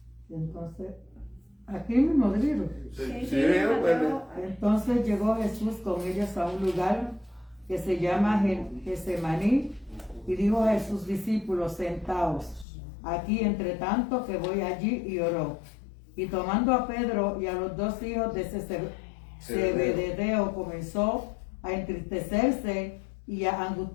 Entonces, aquí mismo del libro. Mateo. Entonces llegó Jesús con ellos a un lugar que se llama Getsemaní, y dijo a sus discípulos, sentaos aquí entre tanto que voy allí, y oró. Y tomando a Pedro y a los dos hijos de Zebedeo, comenzó a entristecerse y a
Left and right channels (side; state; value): right; drops out; at 12.7 s